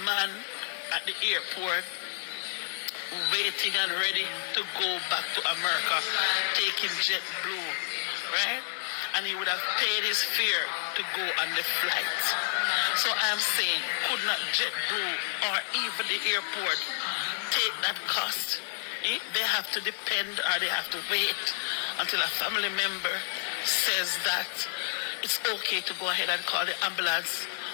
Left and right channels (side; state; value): right; silent; digital silence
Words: man at the airport waiting and ready to go back to America, taking JetBlue, right? And he would have paid his fare to go on the flight. So I'm saying, could not JetBlue or even the airport take that cost? They have to depend or they have to wait until a family member says that it's okay to go ahead and call the ambulance.